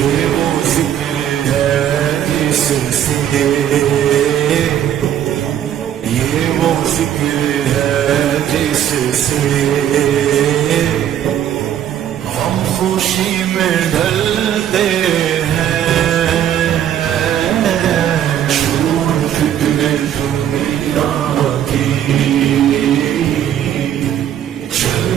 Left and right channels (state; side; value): quieter; left; 10.4 dB